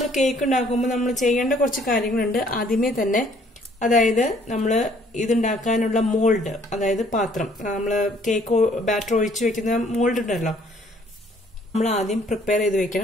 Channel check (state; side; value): normal; both; correlation 0.61